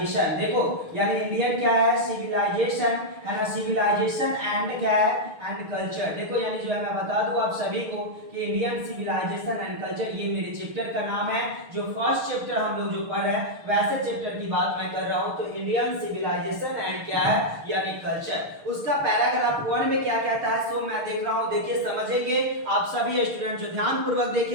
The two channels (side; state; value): left; late; 6.6 ms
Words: देखो यानी इंडियन क्या है? सिविलाइजेशन, है ना, सिविलाइजेशन एंड क्या है? And culture. देखो यानी जो है मैं बता दूं आप सभी को कि इंडियन सिविलाइजेशन एंड कल्चर ये मेरे चैप्टर का नाम है। जो फर्स्ट चैप्टर हम लोग जो पढ़ रहे हैं वैसे चैप्टर की बात मैं कर रहा हूं। तो इंडियन सिविलाइजेशन एंड क्या है? यानी कल्चर। उसका पैराग्राफ 1 में क्या कहता है सो मैं देख रहा हूं, देखिए समझेंगे आप सभी स्टूडेंट जो ध्यान पूर्वक